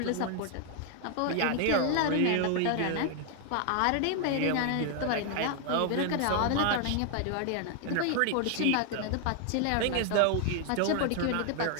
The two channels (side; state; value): both; different; correlation 0.00